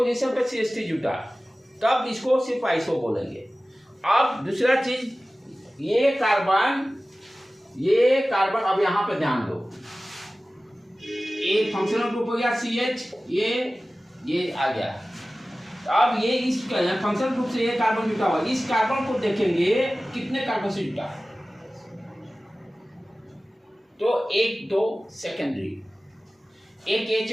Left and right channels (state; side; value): normal; both; correlation 0.97